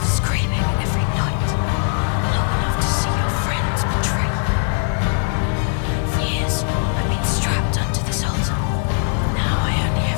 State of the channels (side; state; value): right; silent; 56 dB below the other